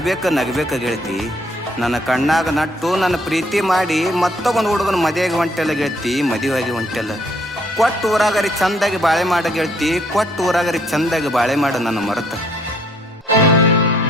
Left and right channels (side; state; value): both; normal; correlation 0.66